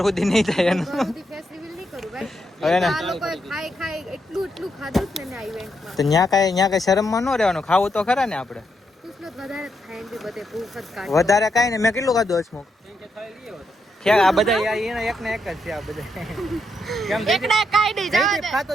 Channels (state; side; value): normal; both; correlation 0.80